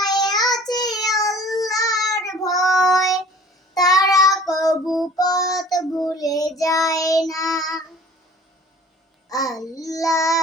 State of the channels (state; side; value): normal; both; correlation 0.48